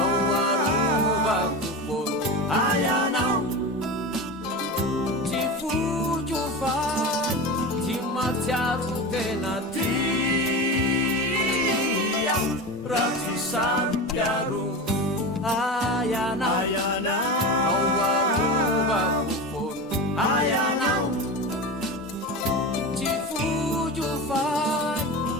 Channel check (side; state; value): both; normal; correlation 0.25